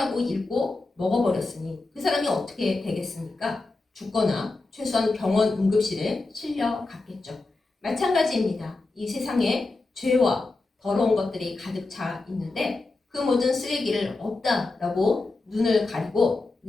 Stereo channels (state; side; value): quieter; right; 3.4 dB